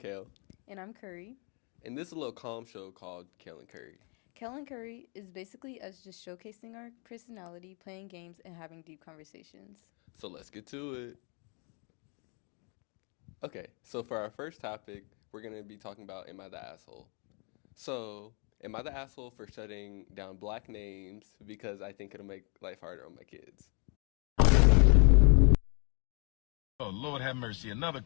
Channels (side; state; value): right; quieter; 36.0 dB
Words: And I'm Curry. and this is a little calm show called Kale and Kurry. Kale and Curry is basically us just showcasing our personality, playing games, and having deep conversations. So let's get to it. Okay, so for our first topic, we're going to be talking about Am I the Asshole? So, am I the asshole for shutting down black names because I think it'll make life harder on my kids? Oh, Lord have mercy, another